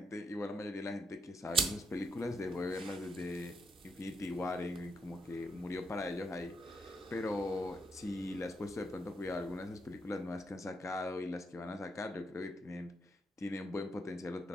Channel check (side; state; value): both; normal; correlation 0.78